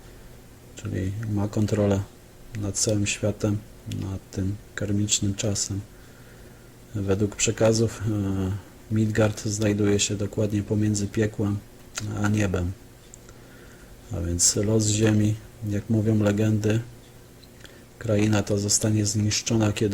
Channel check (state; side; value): identical; both; correlation 1.00